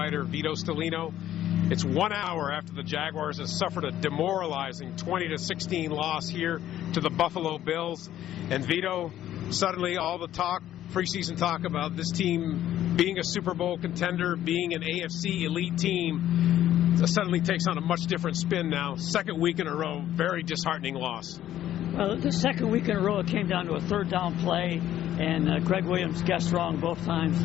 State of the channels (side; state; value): right; quieter; 12.2 dB